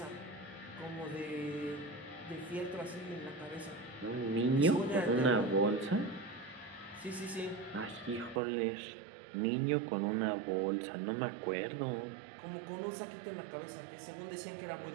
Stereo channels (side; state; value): left; drops out; at 8.4 s